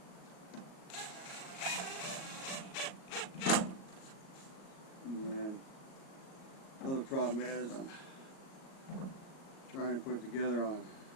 Another problem is I'm trying to put it together on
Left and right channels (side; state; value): right; late; 37 ms